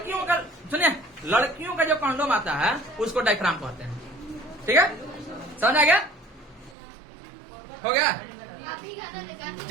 का, सुनिए लड़कियों का जो कंडोम आता है उसको डायफ्राम कहते हैं, ठीक है। समझ आ गया? हो गया?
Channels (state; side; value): drops out; left; at 6.8 s